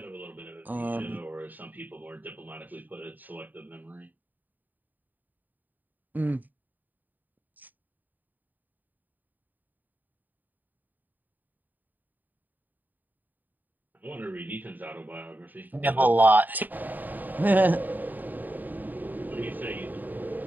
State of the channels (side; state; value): left; late; 0.087 ms